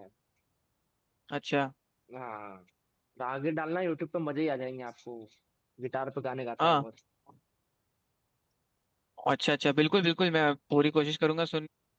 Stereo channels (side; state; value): both; identical; correlation 1.00